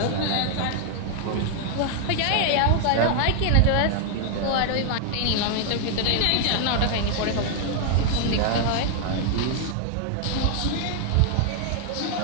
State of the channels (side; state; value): both; different; correlation -0.01